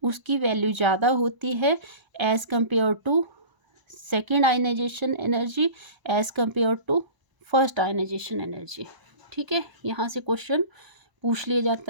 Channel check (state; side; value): late; left; 1.0 ms